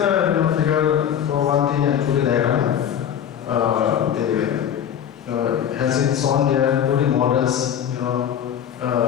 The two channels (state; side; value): quieter; right; 9.2 dB